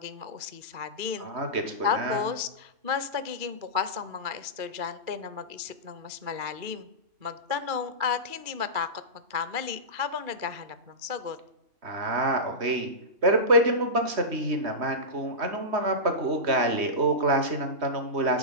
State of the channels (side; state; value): left; late; 2.4 ms